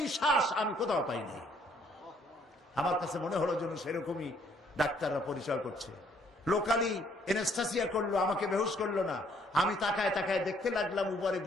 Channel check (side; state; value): both; normal; correlation 0.65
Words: শ্বাস আমি কোথাও পাই নাই। আমার কাছে মনে হলো যেন সেরকমই ডাক্তাররা পরিচয় করছে। লোকালি এনেস্থেসিয়া করলো, আমাকে বেহুশ করলো না। আমি তাকায় তাকায় দেখতে লাগলাম, উপরে